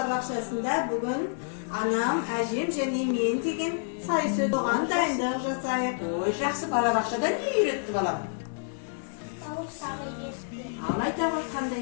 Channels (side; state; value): right; silent; digital silence